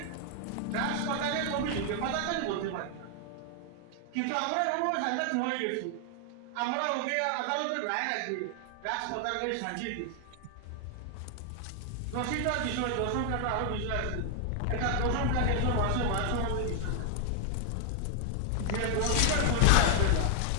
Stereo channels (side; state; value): both; different; correlation 0.00